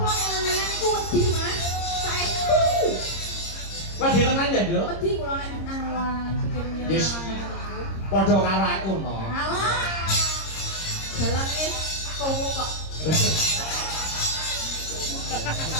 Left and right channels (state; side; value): late; right; 26 ms